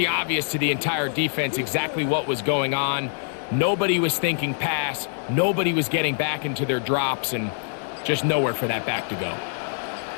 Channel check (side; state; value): right; silent; digital silence